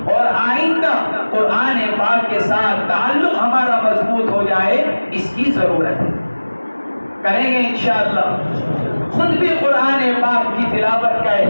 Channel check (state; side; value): inverted; both; correlation -1.00